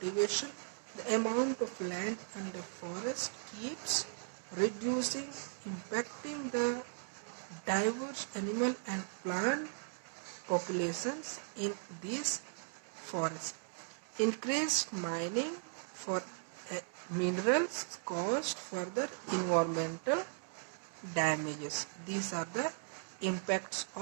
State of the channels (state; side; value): silent; left; 53 dB below the other